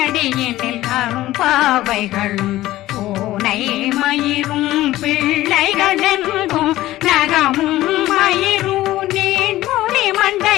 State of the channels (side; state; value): right; quieter; 15.8 dB